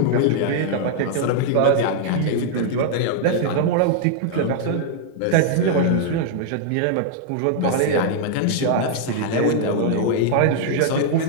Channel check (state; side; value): different; both; correlation -0.01